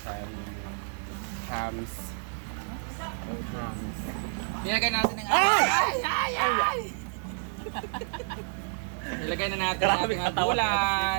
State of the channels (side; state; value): left; silent; 58 dB below the other